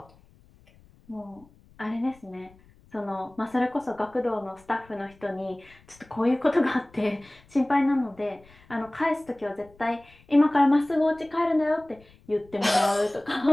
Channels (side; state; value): left; noise; rumble, 28 dB below the sound